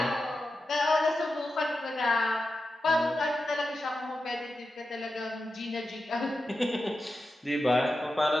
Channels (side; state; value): both; normal; correlation 0.91